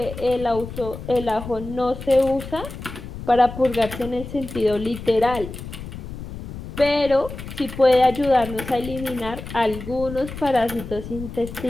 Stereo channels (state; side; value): noise; left; rumble, 11 dB below the sound